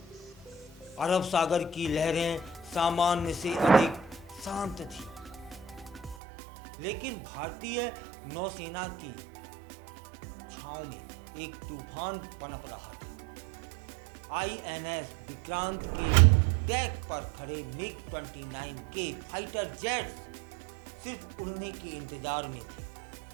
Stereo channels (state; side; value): drops out; left; at 6.2 s